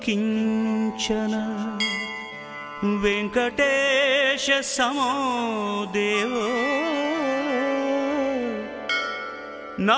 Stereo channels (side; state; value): both; identical; correlation 1.00